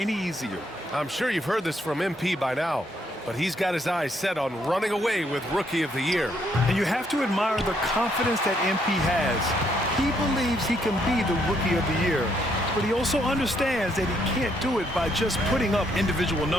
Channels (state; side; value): normal; both; correlation 0.72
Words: easier. I'm sure you've heard this from MP by now, but he's got his eyes set on running away with Rookie of the Year. And you have to admire the confidence that MP has. He believes he can be the Rookie of the Year, but he also understands that he can't do it by just putting up individual